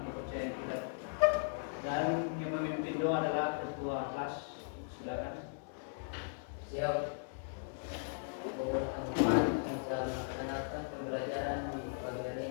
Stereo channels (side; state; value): right; silent; digital silence